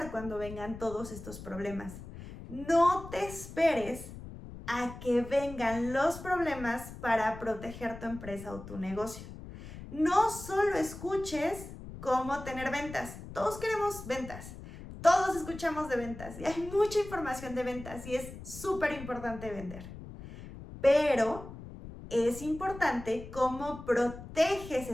cuando vengan todos estos problemas? No te esperes a que vengan los problemas para proteger tu empresa o tu negocio. No solo escuches cómo tener ventas. Todos queremos ventas. Todos escuchamos de ventas y hay mucha información de ventas y es súper importante vender. Pero es importante cómo proteges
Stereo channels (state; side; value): noise; left; rumble, 13 dB below the sound